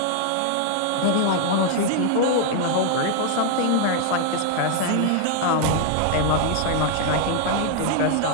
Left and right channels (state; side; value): different; both; correlation 0.00